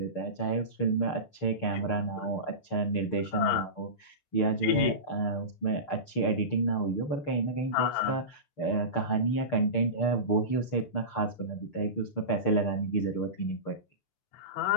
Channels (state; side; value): late; right; 6.6 ms